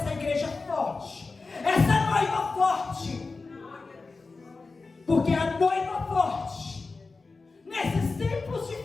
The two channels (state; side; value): quieter; right; 4.0 dB